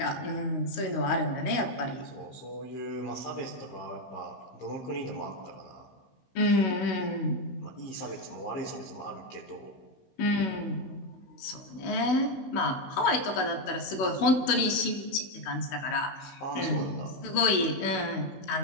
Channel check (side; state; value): right; late; 16 ms